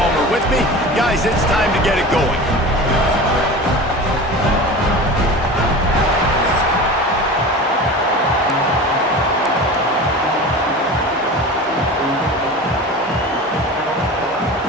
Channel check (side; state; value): both; normal; correlation 0.33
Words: with me. Guys, it's time to get it going.